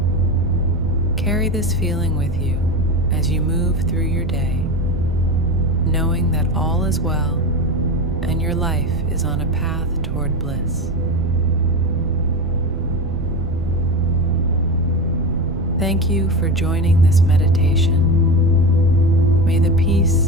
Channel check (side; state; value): right; noise; rumble, 8 dB below the sound